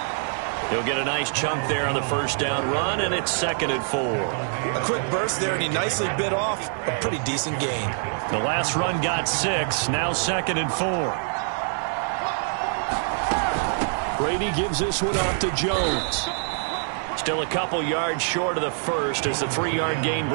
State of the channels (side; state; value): left; silent; 62 dB below the other